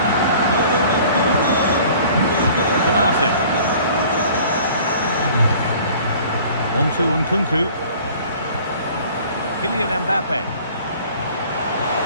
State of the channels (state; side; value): inverted; both; correlation -0.49